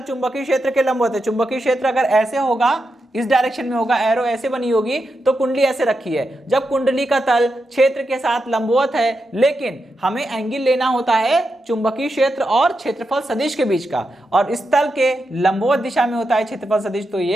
चुंबकीय क्षेत्र के लंबवत है। चुंबकीय क्षेत्र अगर ऐसे होगा, इस डायरेक्शन में होगा, एरो ऐसे बनी होगी, तो कुंडली ऐसे रखी है। जब कुंडली का तल क्षेत्र के साथ लंबवत है, लेकिन हमें एंगल लेना होता है चुंबकीय क्षेत्र और क्षेत्रफल सदिश के बीच का, और इस तल के लंबवत दिशा में होता है क्षेत्रफल सदिश, तो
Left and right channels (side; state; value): both; normal; correlation 0.86